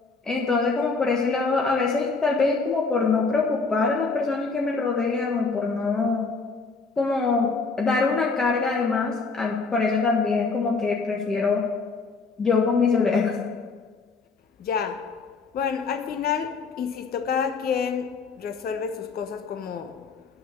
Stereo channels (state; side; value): quieter; right; 4.3 dB